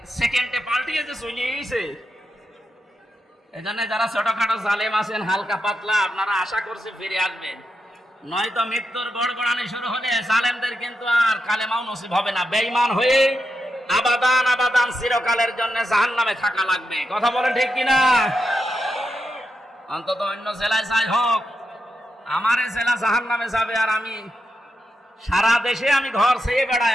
সেকেন্ডে পাল্টিয়েছে, চলে গেছে। এই জন্য যারা ছোটখাটো জালেম আছেন, হালকা পাতলা, আপনারা আশা করছে ফিরে আসবেন, নয়তো মৃত্যুর গড়গড়ানি শুরু হলে জালেমদের কিন্তু আর কালেমাও নসিব হবে না। বেঈমান হয়ে আবাদান আবাদান চিরকালের জন্য জাহান্নামে থাকা লাগবে। কথা বলেন ঠিক কিনা? অন্তত অন্য জেলায় যাই হোক, আমার এই জেলা জাহান্নামে যাবে, আর আমি সারা দেশে আমি ঘর ছেয়ে বেড়াই,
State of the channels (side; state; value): both; normal; correlation 0.86